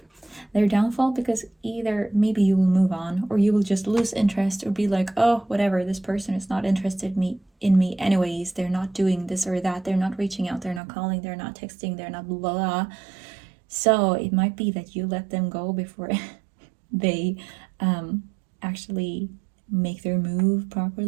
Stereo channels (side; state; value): left; drops out; at 10.8 s